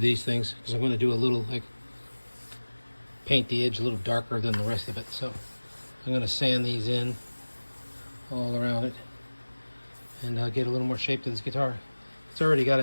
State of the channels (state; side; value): inverted; both; correlation -1.00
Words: things because I'm going to do a little, like, paint the edge a little darker than the rest of it. So I'm going to sand these in all around it and get a little more shape to this guitar. It's already got